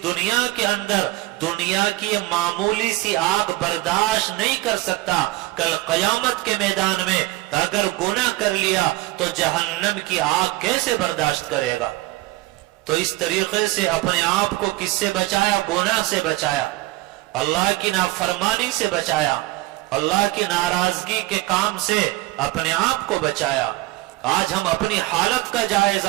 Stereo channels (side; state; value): left; quieter; 18.8 dB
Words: دنیا کے اندر دنیا کی معمولی سی آگ برداشت نہیں کر سکتا، کل قیامت کے میدان میں اگر گناہ کر لیا تو جہنم کی آگ کیسے برداشت کرے گا؟ تو اس طریقے سے اپنے آپ کو کس سے بچایا؟ گناہ سے بچایا، اللہ کی نافرمانی سے بچایا، اللہ کی ناراضگی کے کام سے اپنے آپ کو بچایا۔ آج ہم اپنی حالت کا